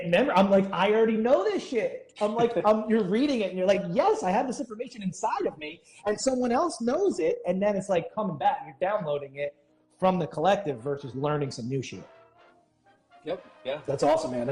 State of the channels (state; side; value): identical; both; correlation 1.00